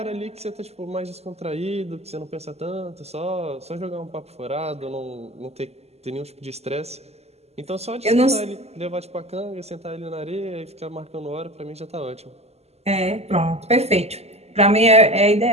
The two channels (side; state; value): left; late; 0.30 ms